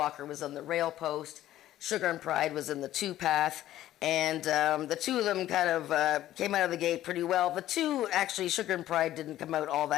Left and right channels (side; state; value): right; quieter; 13.5 dB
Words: was on the rail post. Sugar and Pride was in the 2-path. And the two of them kind of came out of the gate pretty well. The two, actually, Sugar and Pride didn't come out all